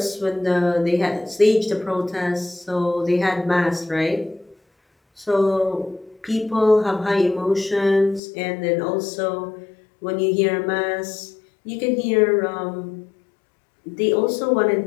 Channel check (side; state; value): right; drops out; at 8.2 s